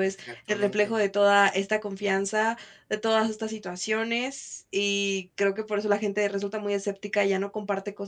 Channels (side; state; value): both; identical; correlation 1.00